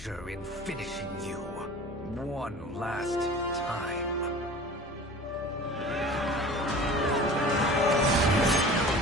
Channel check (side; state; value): both; normal; correlation 0.41